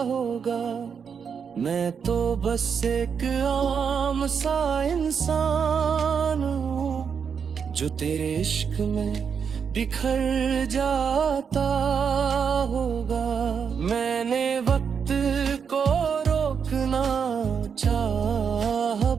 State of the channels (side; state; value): left; quieter; 6.7 dB